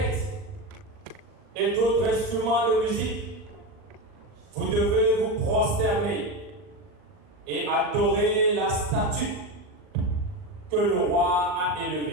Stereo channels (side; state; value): left; late; 40 ms